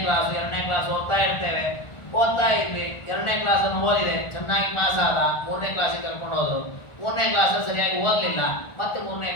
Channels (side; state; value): right; late; 1.4 ms